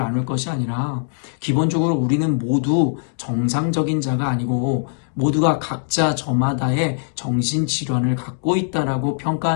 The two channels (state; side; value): silent; right; digital silence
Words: 것이 아니라 기본적으로 우리는 모두 정상적인 자가 아니고 모두가 각자 저마다의 정신질환을 갖고 있다라고